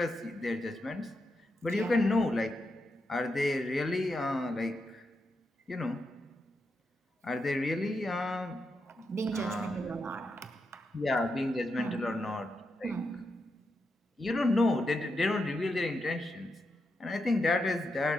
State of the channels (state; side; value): normal; both; correlation 0.84